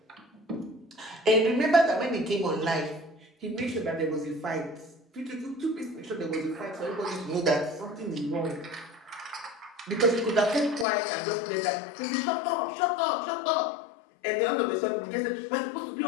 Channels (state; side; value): drops out; right; at 10.9 s